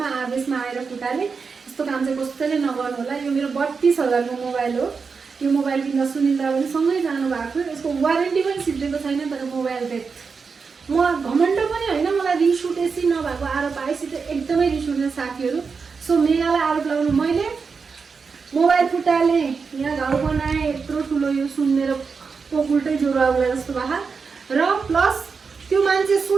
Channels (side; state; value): left; quieter; 5.2 dB